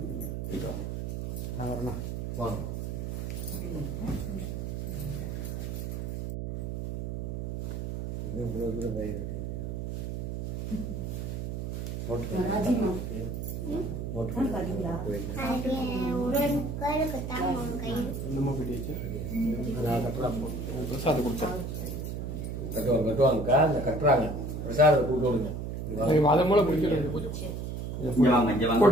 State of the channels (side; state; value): right; noise; hum, 4 dB below the sound